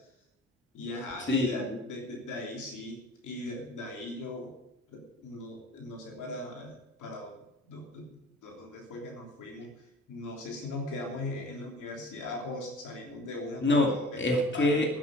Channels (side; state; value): both; normal; correlation 0.44